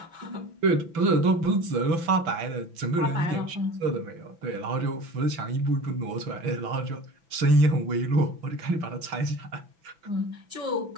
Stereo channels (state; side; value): late; left; 6.0 ms